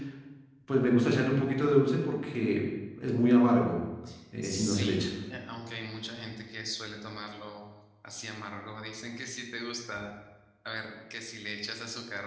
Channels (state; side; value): identical; both; correlation 1.00